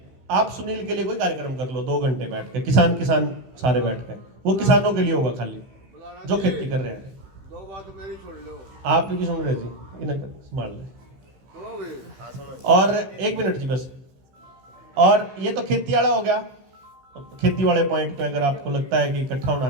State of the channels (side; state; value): left; late; 15 ms